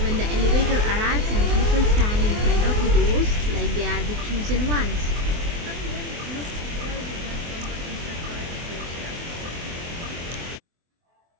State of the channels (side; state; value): left; late; 24 ms